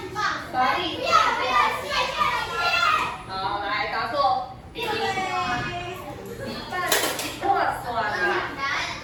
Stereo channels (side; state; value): both; identical; correlation 1.00